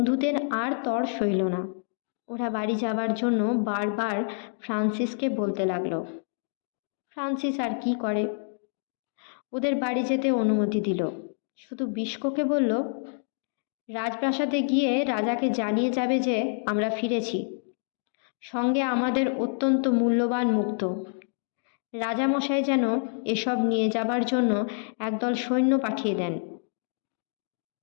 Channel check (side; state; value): right; silent; digital silence